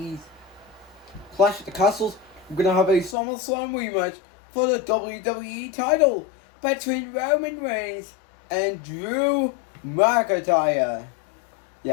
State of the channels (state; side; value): drops out; right; at 3.2 s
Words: Clash of the Castles, we're going to have a SummerSlam rematch for the WWE title between Roman Reigns and Drew McIntyre.